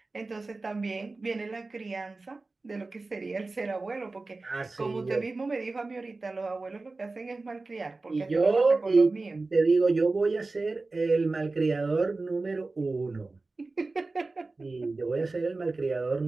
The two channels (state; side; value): quieter; left; 3.5 dB